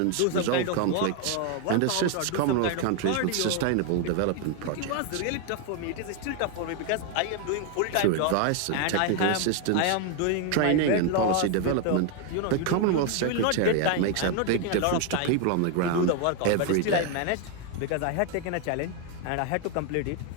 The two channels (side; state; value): both; different; correlation 0.01